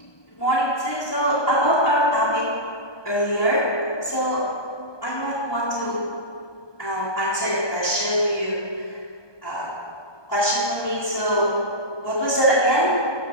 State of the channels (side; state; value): right; late; 1.2 ms